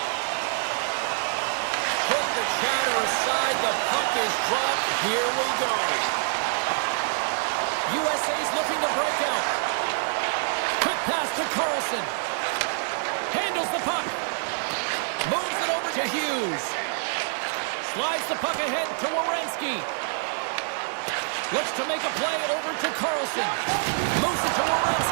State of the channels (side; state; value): left; silent; 61 dB below the other